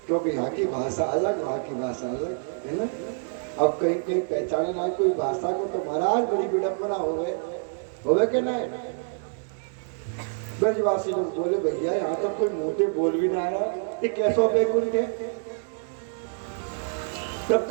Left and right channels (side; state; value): left; silent; digital silence